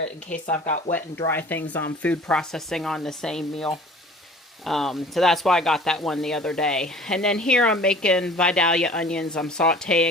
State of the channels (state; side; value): normal; both; correlation 0.46